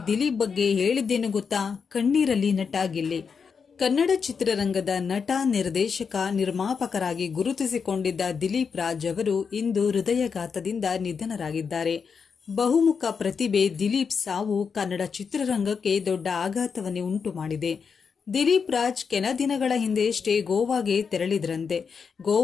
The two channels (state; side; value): quieter; right; 5.9 dB